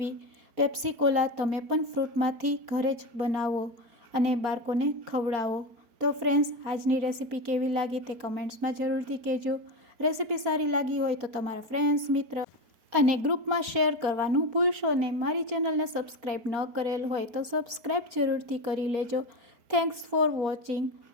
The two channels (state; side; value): late; left; 4.2 ms